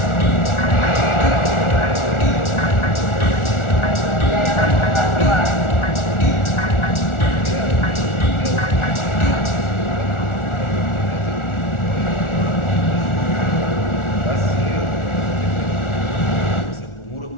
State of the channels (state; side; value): late; right; 1.4 ms